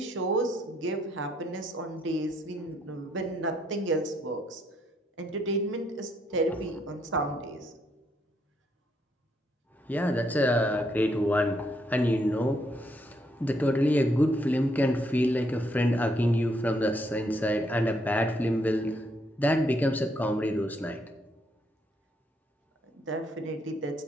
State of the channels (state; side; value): normal; both; correlation 0.74